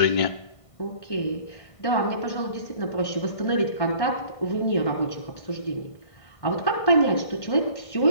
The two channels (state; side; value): late; right; 1.5 ms